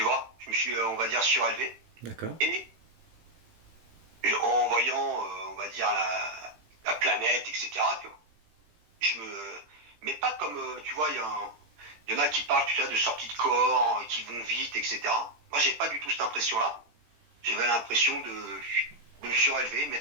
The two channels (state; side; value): late; left; 17 ms